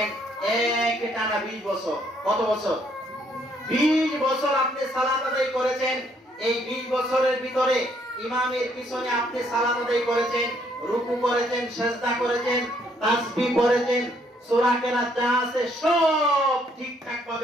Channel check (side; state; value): both; normal; correlation 0.68